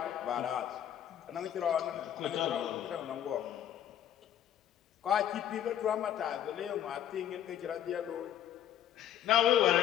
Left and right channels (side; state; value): right; quieter; 10.5 dB